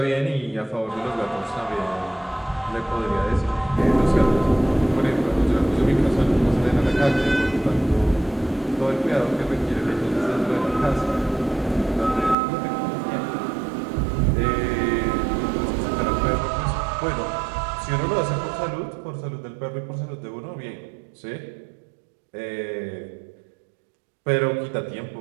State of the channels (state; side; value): drops out; left; at 12.4 s